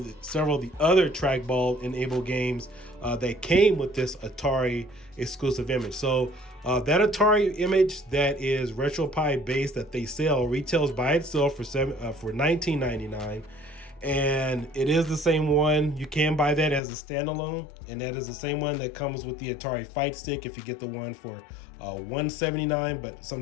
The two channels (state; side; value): drops out; right; at 16.8 s